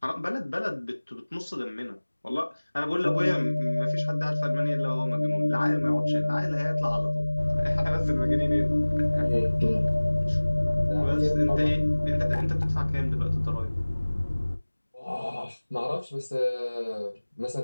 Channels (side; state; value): both; inverted; correlation -1.00